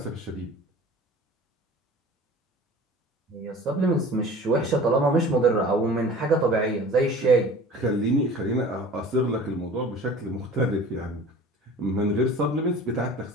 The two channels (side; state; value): both; normal; correlation 0.42